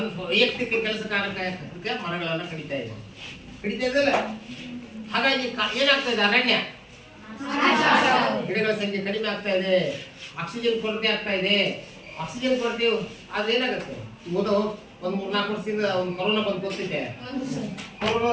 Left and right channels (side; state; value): both; identical; correlation 1.00